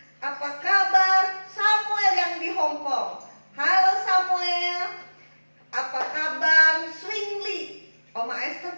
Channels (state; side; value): inverted; both; correlation -1.00